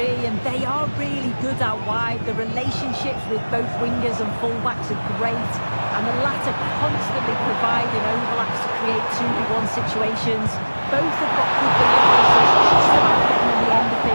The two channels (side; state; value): both; inverted; correlation -1.00